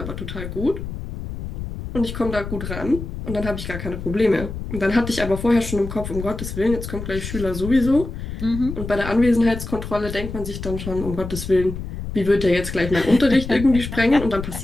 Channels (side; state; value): left; noise; rumble, 8 dB below the sound